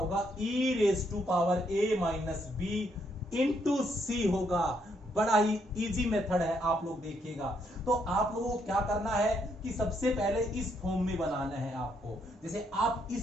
e raise to power a minus b into c होगा। बड़ा ही इजी मेथड है, आप लोग देखिएगा। तो आप लोगों को क्या करना है कि सबसे पहले इस फॉर्म में बनाना है आपको। जैसे आप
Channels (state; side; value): normal; both; correlation 0.74